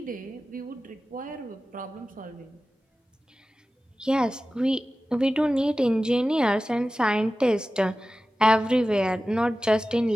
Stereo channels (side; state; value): both; normal; correlation 0.95